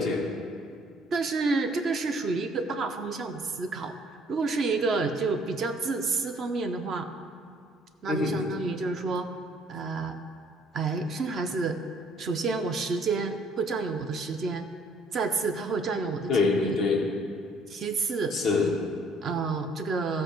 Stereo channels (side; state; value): both; normal; correlation 0.61